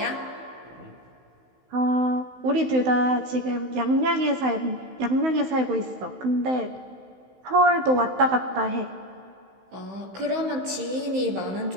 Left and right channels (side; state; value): left; late; 16 ms